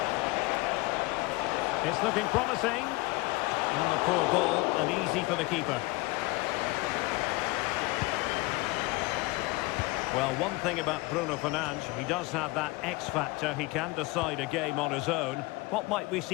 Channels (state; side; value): quieter; right; 22.5 dB